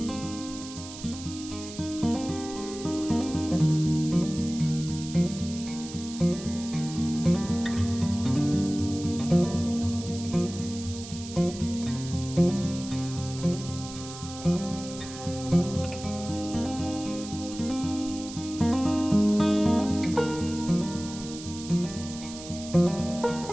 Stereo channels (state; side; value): noise; right; hiss, 13 dB below the sound